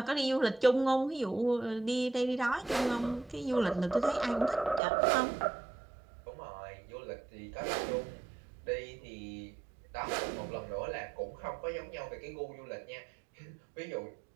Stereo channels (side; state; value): left; drops out; at 4.8 s